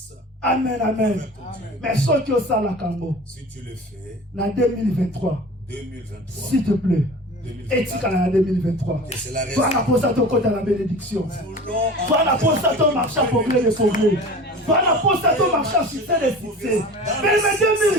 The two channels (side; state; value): both; normal; correlation 0.38